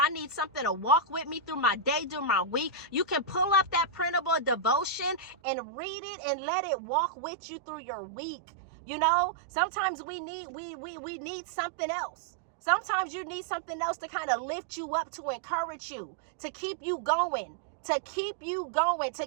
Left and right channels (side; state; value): left; drops out; at 5.4 s